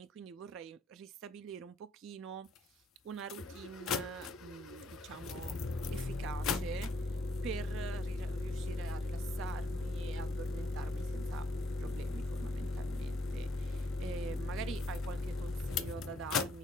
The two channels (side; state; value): both; normal; correlation 0.71